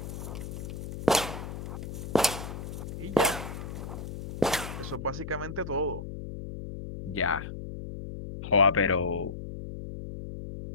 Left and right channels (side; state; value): left; noise; hum, 8 dB below the sound